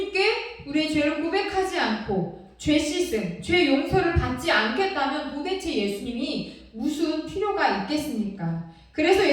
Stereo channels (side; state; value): both; identical; correlation 1.00